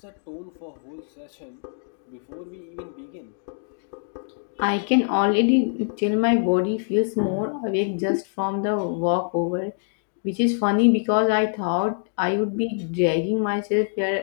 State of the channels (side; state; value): right; silent; digital silence